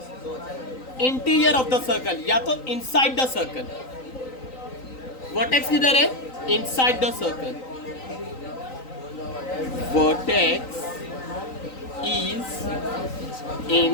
इंटीरियर ऑफ द सर्कल या तो इनसाइड द सर्कल। वर्टेक्स किधर है? Inside the circle. Vertex is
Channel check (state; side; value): late; right; 3.9 ms